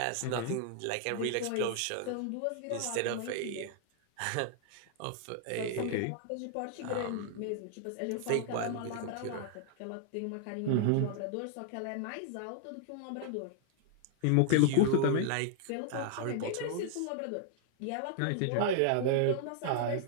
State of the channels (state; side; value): different; both; correlation -0.01